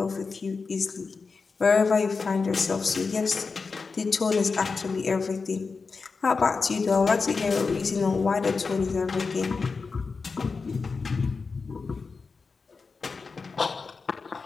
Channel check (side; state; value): right; quieter; 4.6 dB